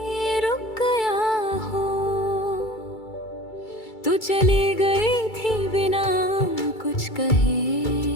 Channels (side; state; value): right; late; 2.3 ms